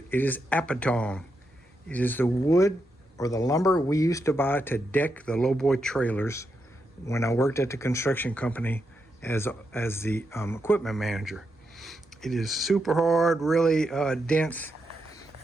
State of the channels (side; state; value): both; normal; correlation 0.84